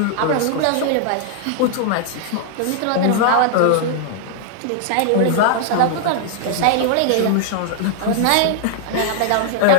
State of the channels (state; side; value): different; both; correlation -0.01